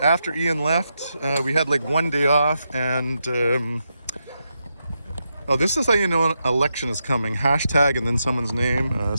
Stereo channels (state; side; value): inverted; both; correlation -0.85